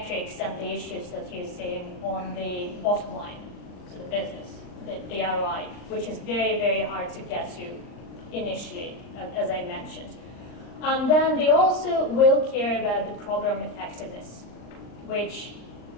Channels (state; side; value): late; right; 39 ms